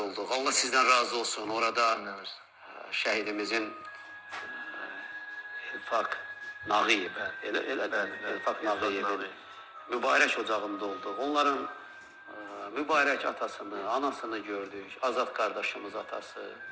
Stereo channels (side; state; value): both; identical; correlation 1.00